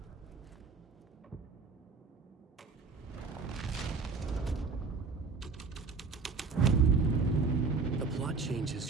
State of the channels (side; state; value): left; quieter; 4.6 dB